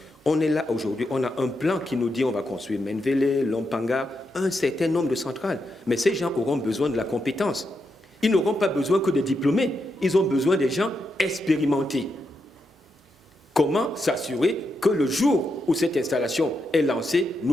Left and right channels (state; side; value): normal; both; correlation 0.84